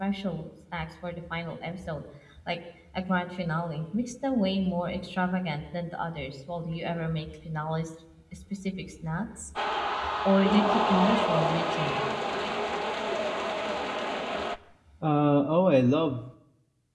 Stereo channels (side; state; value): both; identical; correlation 1.00